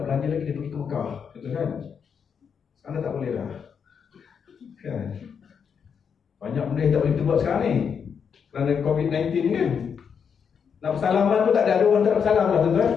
lagi dia pergi ke Mekah, betul kan? Sekarang tak boleh dah. Kan? Banyak benda yang tak boleh kita buat sekarang ni. Kerana COVID-19 kan. Nak bersalaman tu tak ada orang tak bersalam lah tuan-tuan.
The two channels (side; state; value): right; quieter; 6.9 dB